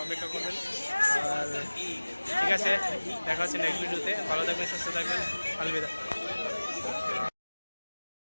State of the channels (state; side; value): inverted; both; correlation -1.00